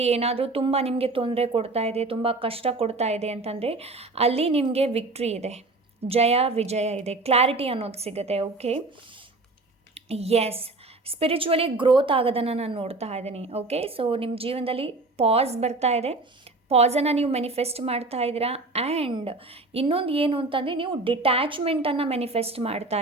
ಏನಾದರೂ ತುಂಬ ನಿಮಗೆ ತೊಂದರೆ ಕೊಡ್ತಾ ಇದೆ, ತುಂಬ ಕಷ್ಟ ಕೊಡ್ತಾ ಇದೆ ಅಂತಂದರೆ ಅಲ್ಲಿ ನಿಮಗೆ ವಿಕ್ಟ್ರಿ ಇದೆ, ಜಯ ವಿಜಯ ಇದೆ, ಕ್ಲಾರಿಟಿ ಅನ್ನೋದು ಸಿಗುತ್ತೆ. ಓಕೆ, ಎಸ್, ಸ್ಪಿರಿಚುವಲಿ ಗ್ರೋತ್ ಆಗೋದನ್ನು ನಾನು ನೋಡ್ತಾ ಇದ್ದೀನಿ. ಓಕೆ, ಸೊ ನಿಮ್ಮ ಜೀವನದಲ್ಲಿ ಪಾಸ್ ಬರ್ತಾ ಇದೆ, ಪಾಸನ್ನು ನೀವು ಮ್ಯಾನಿಫೆಸ್ಟ್ ಮಾಡ್ತಾ ಇದ್ದೀರಾ. ಆ್ಯಂಡ್ ಇನ್ನೊಂದು ಏನು ಅಂತಂದರೆ ನೀವು ಡಿಟ್ಯಾಚ್ಮೆಂಟನ್ನು ಮ್ಯಾನಿಫೆಸ್ಟ್ ಮಾಡ್ತಾ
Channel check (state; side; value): quieter; left; 3.2 dB